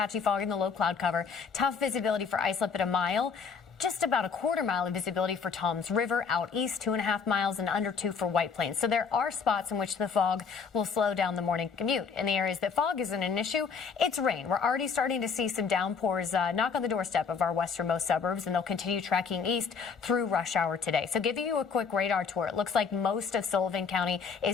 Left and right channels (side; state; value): right; quieter; 5.8 dB